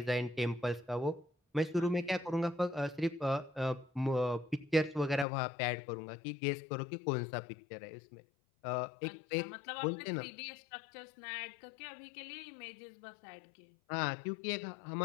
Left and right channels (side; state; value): right; drops out; at 5.2 s